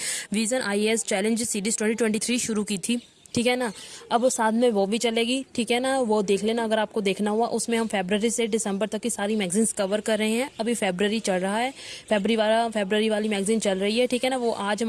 विजन आईएएस चैलेंज सीरीज 2023 शुरू की थी। ठीक है ना। अब वो साथ में वो भी चलेगी। ठीक है ना, वो देख लेना अगर आपको देखना हुआ। उसमें हम फरवरी से दिसंबर तक की सारी मैगजीन्स कवर कर रहे हैं। अभी फरवरी चल रहा है, फरवरी वाली मैगजीन चल रही है। ठीक है ना। वो आज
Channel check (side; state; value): both; identical; correlation 1.00